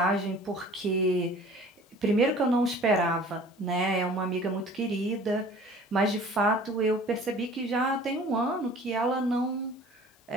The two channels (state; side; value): normal; both; correlation 0.47